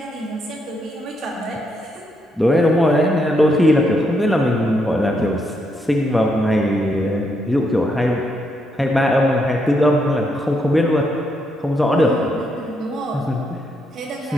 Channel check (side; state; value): both; normal; correlation 0.78